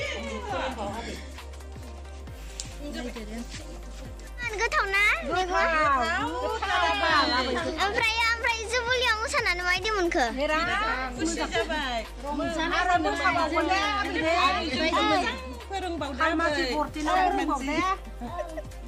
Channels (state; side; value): identical; both; correlation 1.00